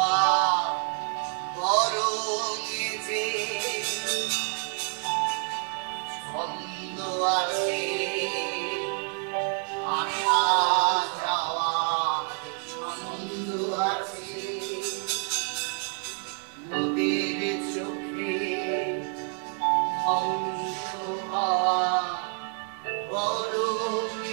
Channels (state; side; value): quieter; left; 39.1 dB